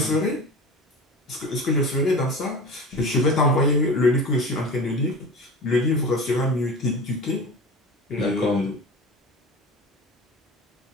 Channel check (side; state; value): both; normal; correlation 0.33